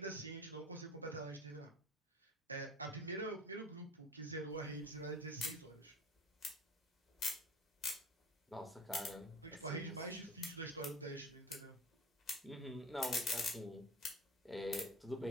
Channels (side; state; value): both; normal; correlation 0.40